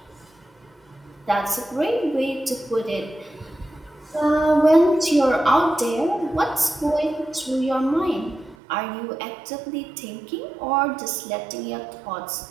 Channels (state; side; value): drops out; left; at 8.6 s